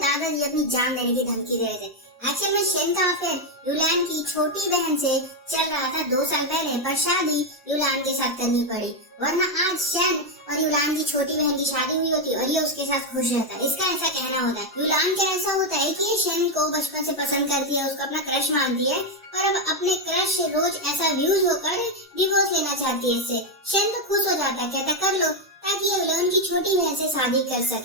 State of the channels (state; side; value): normal; both; correlation 0.04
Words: अपनी जान देने की धमकी दे रहे थे। एक्चुअल में शेन का अफेयर युलान की छोटी बहन से चल रहा था 2 साल पहले, पर शादी युलान के साथ करनी पड़ी, वरना आज शेन और युलान की छोटी बहन की शादी हुई होती और ये उसके साथ खुश रहता। इसका ऐसा कहना होता है। युलान का ऐसा होता है कि ये शेन को बचपन से पसंद करती है, उसको अपना क्रश मानती है और अब अपने क्रश से रोज ऐसा व्यूज होकर डिवोर्स लेना चाहती है इससे। शेन तो खुश हो जाता है, कहता कर लो ताकि युलान की छोटी बहन से शादी कर